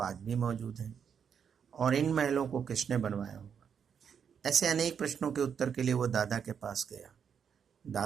भी मौजूद हैं और इन महलों को किसने बनवाया होगा। ऐसे अनेक प्रश्नों के उत्तर के लिए वो दादा के पास गया।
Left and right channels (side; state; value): left; quieter; 7.3 dB